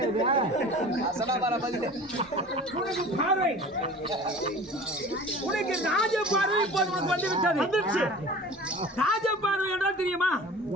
உனக்கு ராஜ பார்வை இப்போது உனக்கு வந்து விட்டது. ராஜ பார்வை என்றால் தெரியுமா?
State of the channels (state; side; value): normal; both; correlation 0.41